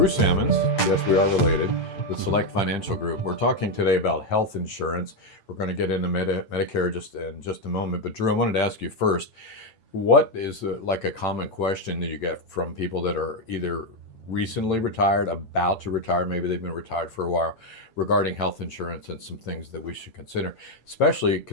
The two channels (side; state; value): right; late; 8.9 ms